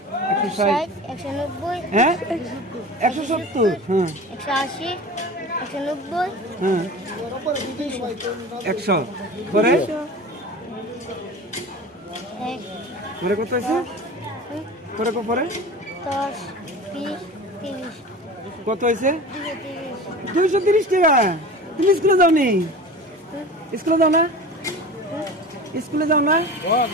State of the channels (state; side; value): normal; both; correlation 0.35